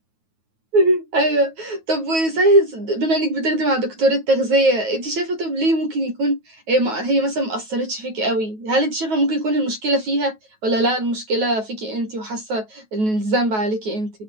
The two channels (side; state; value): left; late; 9.3 ms